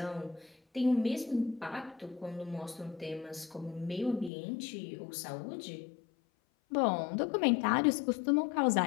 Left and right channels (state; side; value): drops out; right; at 4.3 s